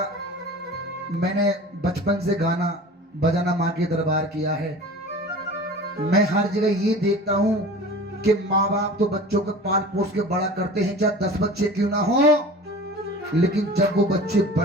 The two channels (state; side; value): normal; both; correlation 0.38